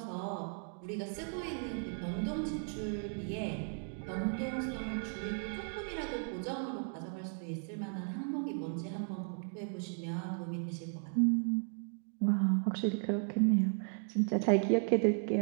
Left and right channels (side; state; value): left; silent; 54 dB below the other